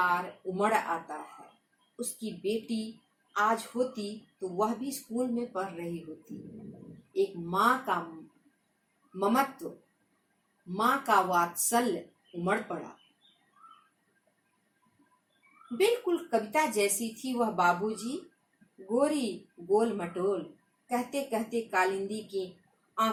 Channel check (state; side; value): identical; both; correlation 1.00